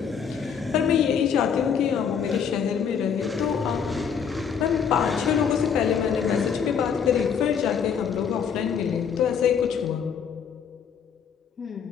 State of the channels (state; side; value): quieter; right; 7.2 dB